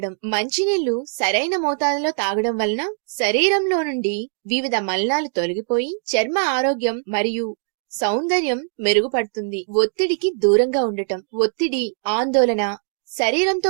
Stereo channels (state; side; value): silent; left; 64 dB below the other